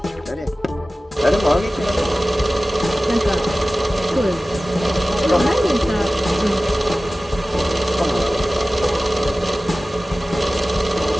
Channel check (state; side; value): normal; both; correlation 0.97